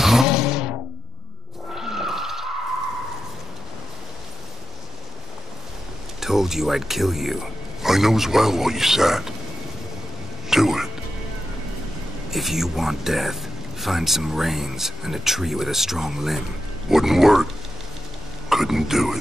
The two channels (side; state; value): both; normal; correlation 0.88